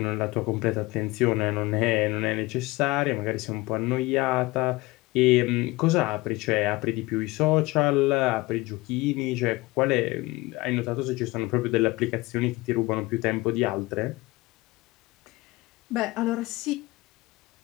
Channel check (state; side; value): quieter; right; 21.3 dB